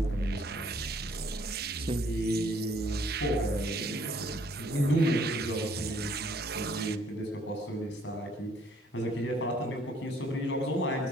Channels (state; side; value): normal; both; correlation 0.63